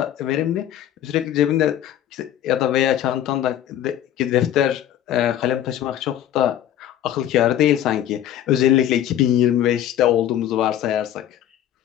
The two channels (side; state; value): right; quieter; 11.4 dB